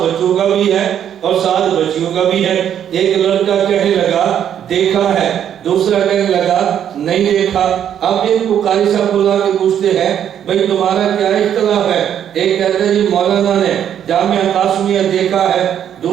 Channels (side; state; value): left; quieter; 9.6 dB